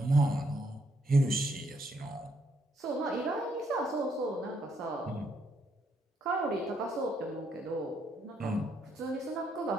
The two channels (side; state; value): both; normal; correlation 0.73